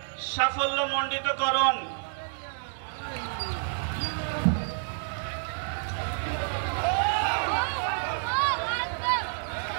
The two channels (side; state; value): left; silent; digital silence